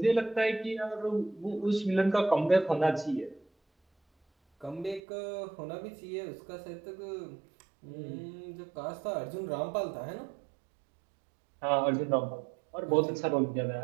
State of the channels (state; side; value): drops out; left; at 5.0 s